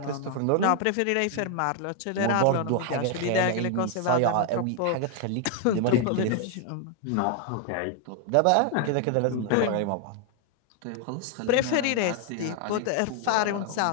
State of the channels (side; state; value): both; different; correlation 0.00